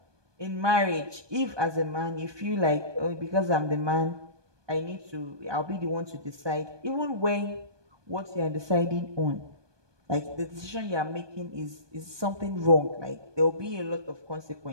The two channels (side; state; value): left; late; 1.2 ms